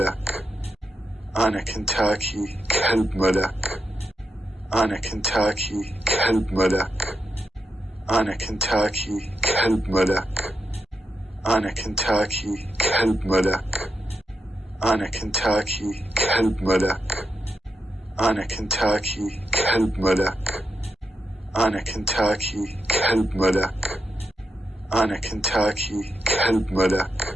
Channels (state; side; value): normal; both; correlation 0.84